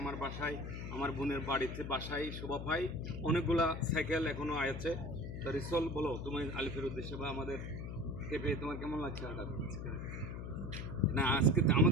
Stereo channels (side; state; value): left; noise; hum, 6 dB below the sound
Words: আমার বাসায়, আমার বোনের বাড়িতে বাসায় শোভা পায়, অনেকগুলা সাইকেল এখনও আছে। তো রিসল, বলো তুমি আলিফের উদ্দেশ্যে বা আমাদের কে পেয়ে তোমার কেমন লাগছে? হঠাৎ না, আজকে